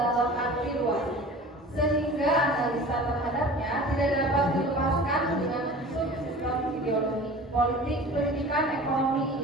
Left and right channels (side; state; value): both; normal; correlation 0.40